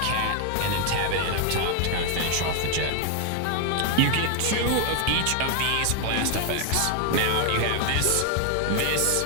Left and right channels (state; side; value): different; both; correlation 0.00